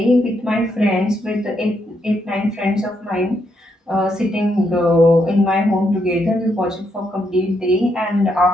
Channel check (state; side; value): normal; both; correlation 0.78